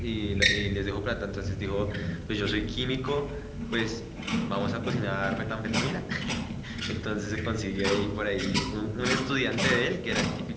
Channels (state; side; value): identical; both; correlation 1.00